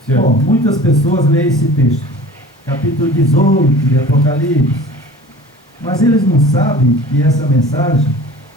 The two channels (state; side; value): normal; both; correlation 0.42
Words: Bom, muitas pessoas leem esse texto, capítulo 18 de Apocalipse, mas eles não sabem que essa mensagem